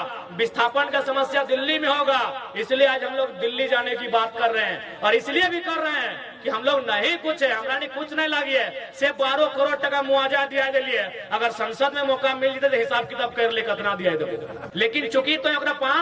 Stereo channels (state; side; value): identical; both; correlation 1.00